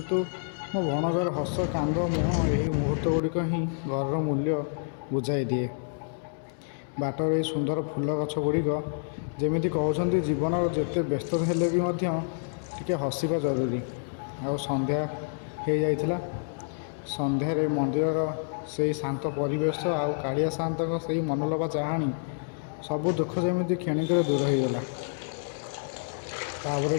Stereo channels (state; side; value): silent; right; digital silence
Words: ମୋ ଭଣଜାର ହସ, କାନ୍ଦ, ମୁହଁ ଏହି ମୁହୂର୍ତ୍ତ ଗୁଡ଼ିକ ହିଁ ଘରର ମୂଲ୍ୟ ବୁଝାଇ ଦିଏ। ବାଟର ଏଇ ସୁନ୍ଦର ଫୁଲ ଗଛ ଗୁଡ଼ିକ ଯେମିତି କହୁଛନ୍ତି, ଜୀବନର ଯେତେ ବ୍ୟସ୍ତ ହେଲେ ବି ମଧ୍ୟ ଟିକେ ହସିବା ଜରୁରୀ। ଆଉ ସନ୍ଧ୍ୟା ହେଇଯାଇଥିଲା। ସନ୍ଧ୍ୟାରେ ମନ୍ଦିରର ସେଇ ଶାନ୍ତ ପରିବେଶ ଆଉ କାଳିଆ ସାଆନ୍ତଙ୍କ ସେଇ ମନଲୋଭା ଚାହାଣୀ, ସବୁ ଦୁଃଖ ଯେମିତି କ୍ଷଣିକରେ ଦୂର ହୋଇଗଲା। ତାପରେ